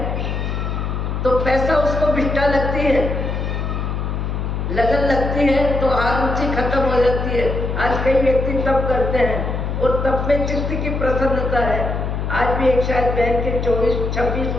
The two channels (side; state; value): left; noise; hum, 2 dB below the sound